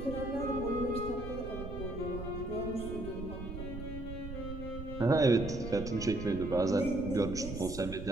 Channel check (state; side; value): noise; right; rumble, 9 dB below the sound